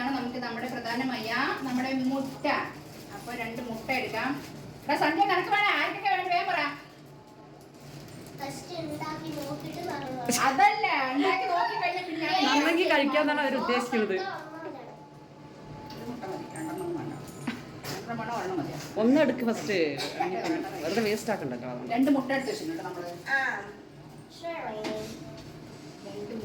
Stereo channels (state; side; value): identical; both; correlation 1.00